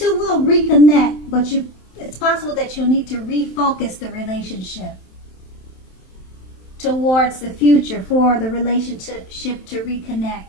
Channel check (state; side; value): late; right; 27 ms